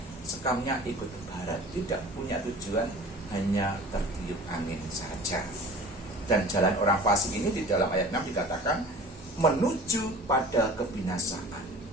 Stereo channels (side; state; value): both; normal; correlation 0.42